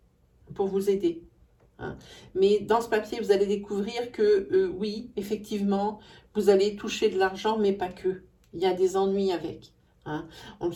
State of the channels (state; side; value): identical; both; correlation 1.00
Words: pour vous aider. Hein. Mais dans ce papier, vous allez découvrir que oui, effectivement, vous allez toucher de l'argent, mais pas que. Il y a des ennuis avec. Hein. On le